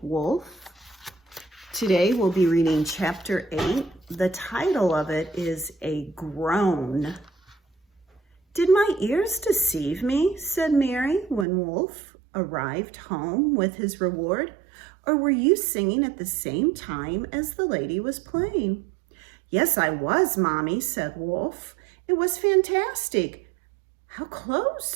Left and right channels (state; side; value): drops out; left; at 11.5 s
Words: Wolf. Today we'll be reading chapter 8. The title of it is A Groan. "Did my ears deceive me?" said Mary when Wolf arrived home with his reward. "Or were you singing at the same time as the lady was playing?" "Yes, I was, Mommy," said Wolf. "It was fantastic." "How